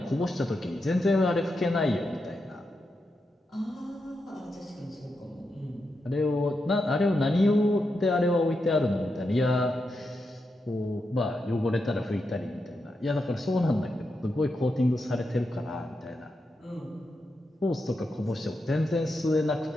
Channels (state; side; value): normal; both; correlation 0.86